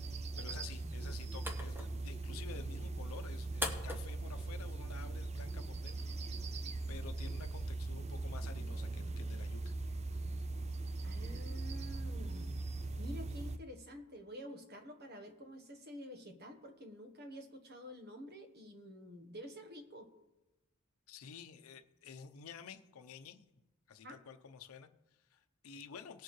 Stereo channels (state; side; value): normal; both; correlation 0.79